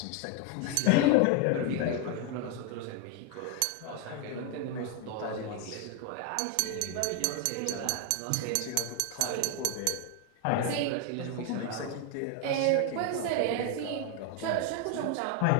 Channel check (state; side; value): different; both; correlation 0.01